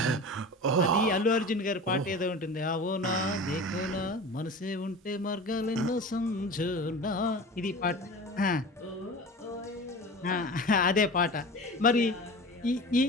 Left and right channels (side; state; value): both; normal; correlation 0.34